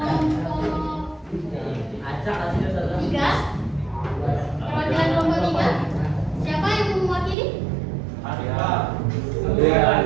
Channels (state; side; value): drops out; left; at 7.4 s